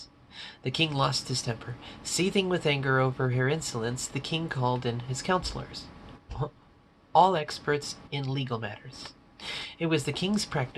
The king lost his temper. Seething with anger over her insolence, the king called in his counselors, all experts in legal matters. It was the king's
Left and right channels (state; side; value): identical; both; correlation 1.00